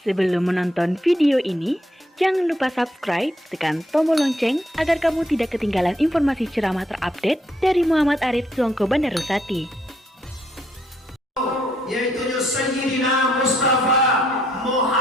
Sebelum menonton video ini, jangan lupa subscribe, tekan tombol lonceng agar kamu tidak ketinggalan informasi ceramah terupdate dari Muhammad Arif Suongko Bandar Rusati. Yaitu Sayyidina Mustafa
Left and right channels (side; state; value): both; normal; correlation 0.72